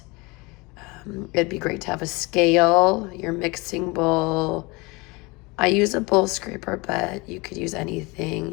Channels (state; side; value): quieter; right; 25.4 dB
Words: It'd be great to have a scale, your mixing bowl. I use a bowl scraper, but you could use